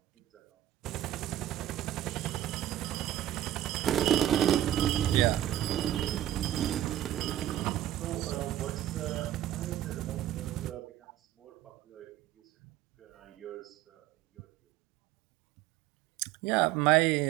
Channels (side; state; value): left; quieter; 12.9 dB